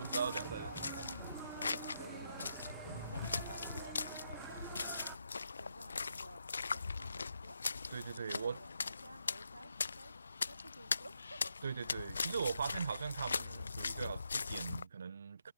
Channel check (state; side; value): inverted; both; correlation -0.80